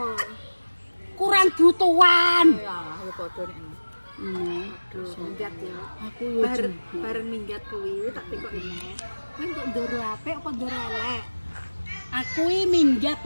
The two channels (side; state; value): both; inverted; correlation -1.00